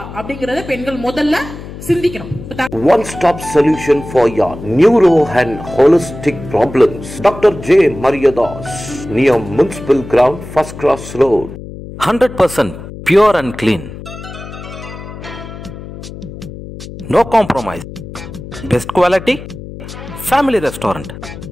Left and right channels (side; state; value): left; noise; hum, 13 dB below the sound